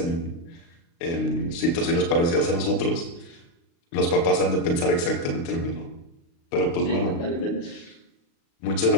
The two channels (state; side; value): late; right; 35 ms